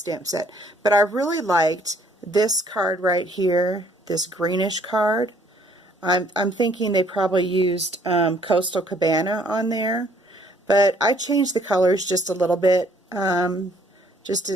stamp set. But I really liked this card right here, this greenish card. I'm thinking they probably used Coastal Cabana on there, but I changed the colors just a little bit. Just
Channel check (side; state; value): both; normal; correlation 0.62